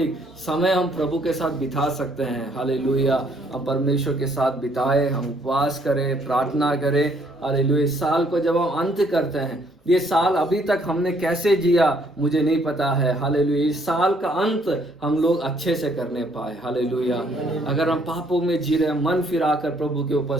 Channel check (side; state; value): both; normal; correlation 0.66